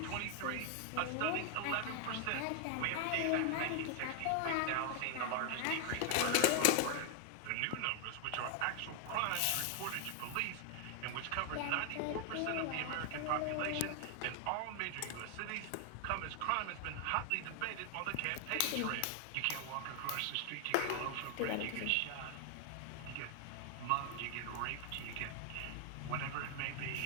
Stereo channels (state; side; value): different; both; correlation 0.00